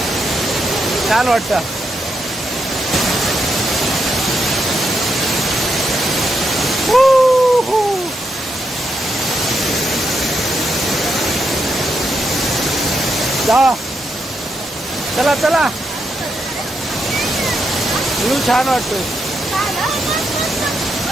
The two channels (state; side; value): normal; both; correlation 0.82